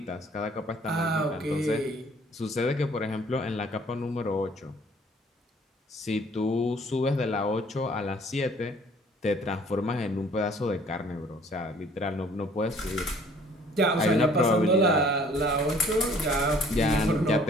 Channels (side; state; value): both; normal; correlation 0.56